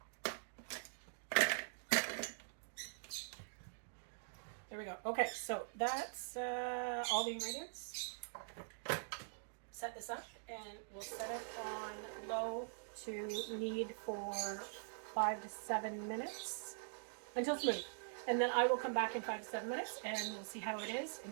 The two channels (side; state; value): left; silent; digital silence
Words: There we go. Okay, so that's all the ingredients. Set this up and we'll set it on low to knead for 5 to 7 minutes until smooth. And then I will come back in 5 to 7 minutes and we'll see how it is.